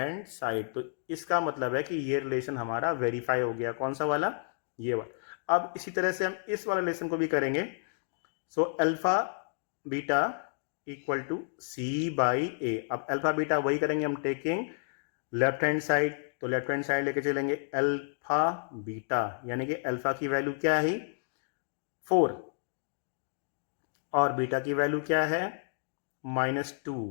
side. तो इसका मतलब है कि ये रिलेशन हमारा वेरीफाई हो गया। कौन सा वाला, ये वाला। अब इसी तरह से हम इस वाले रिलेशन को भी करेंगे। So alpha beta equal to c/a। अब अल्फा बीटा वही करेंगे हम, टेकिंग लेफ्ट हैंड साइड, तो लेफ्ट हैंड साइड लेके चलेंगे अल्फा बीटा, यानी कि अल्फा की वैल्यू क्या है, 4, और बीटा की वैल्यू क्या है,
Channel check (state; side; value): silent; right; digital silence